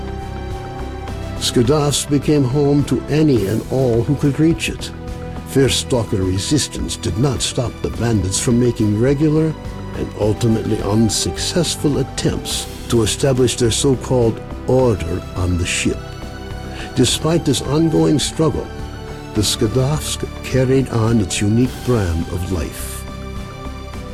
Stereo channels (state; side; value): identical; both; correlation 1.00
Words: Skadovsk became home to any and all who could reach it. Fierce Stalker resistance did not stop the bandits from making regular and ultimately unsuccessful attempts to establish their so-called order on the ship. Despite this ongoing struggle, the Skadovsk carried on its unique brand of life.